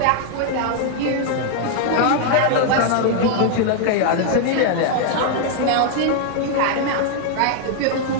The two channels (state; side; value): different; both; correlation 0.00